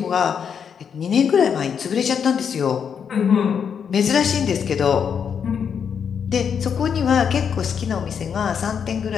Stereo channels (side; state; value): right; quieter; 7.2 dB